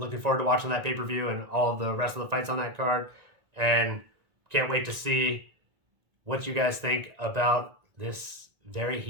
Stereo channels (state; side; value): late; left; 1.9 ms